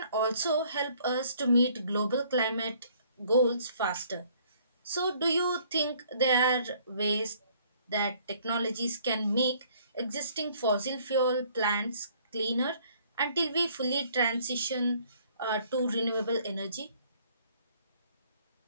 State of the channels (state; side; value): inverted; both; correlation -0.60